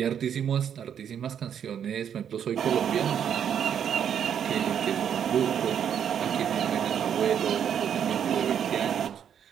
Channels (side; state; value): left; quieter; 8.7 dB